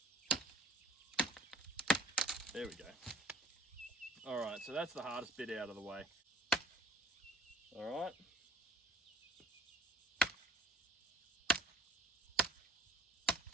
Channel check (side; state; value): both; normal; correlation 0.52